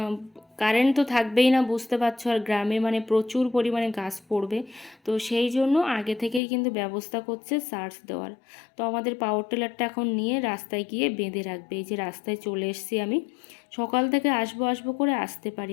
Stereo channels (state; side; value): drops out; right; at 6.4 s